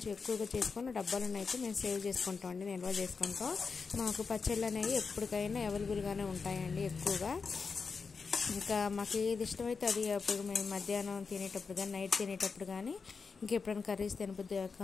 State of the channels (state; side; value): quieter; right; 5.0 dB